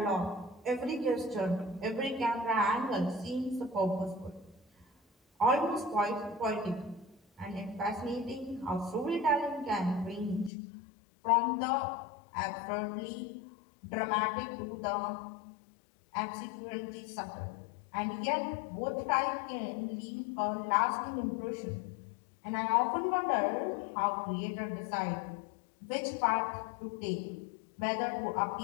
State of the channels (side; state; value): right; drops out; at 10.5 s